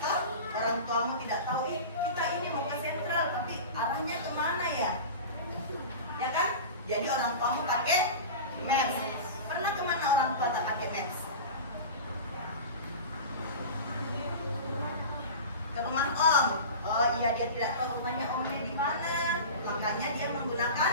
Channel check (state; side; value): inverted; both; correlation -0.31